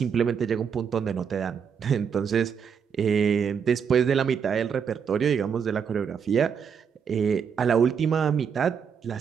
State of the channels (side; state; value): left; quieter; 7.0 dB